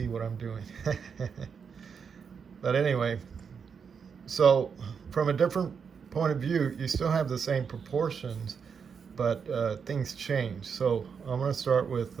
what I'm doing. But anyway, so from a different point of view, you still have the same proportions, but things change. So I'm going to start with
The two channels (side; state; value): left; quieter; 6.4 dB